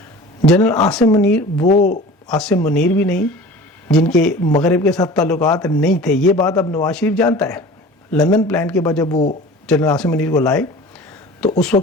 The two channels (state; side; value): normal; both; correlation 0.40